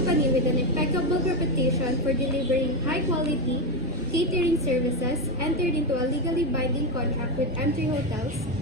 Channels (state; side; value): normal; both; correlation 0.11